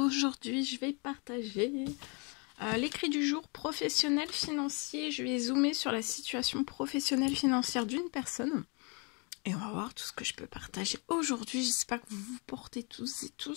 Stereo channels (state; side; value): quieter; right; 33.3 dB